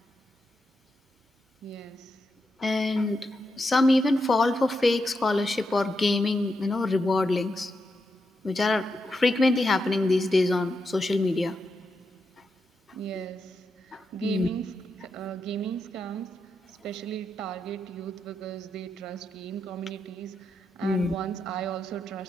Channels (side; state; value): both; normal; correlation 0.85